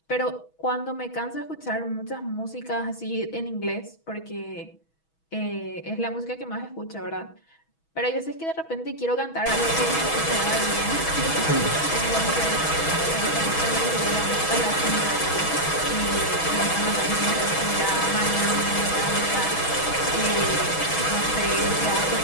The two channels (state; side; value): late; right; 6.2 ms